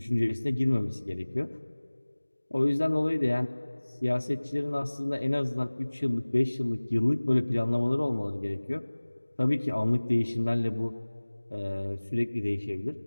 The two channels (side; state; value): both; inverted; correlation -1.00